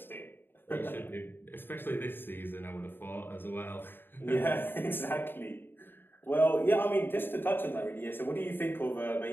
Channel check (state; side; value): late; right; 0.098 ms